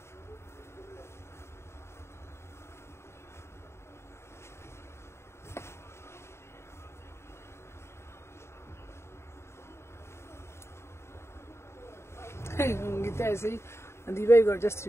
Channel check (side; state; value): right; late; 0.13 ms